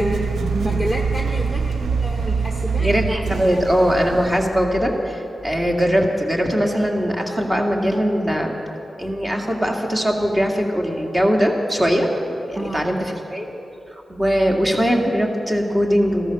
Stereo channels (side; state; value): both; normal; correlation 0.93